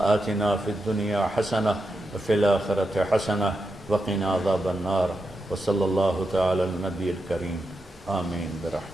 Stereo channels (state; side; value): normal; both; correlation 0.87